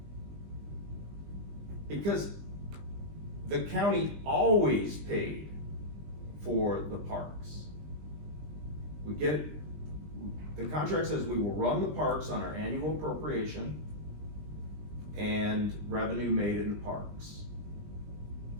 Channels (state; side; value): late; left; 20 ms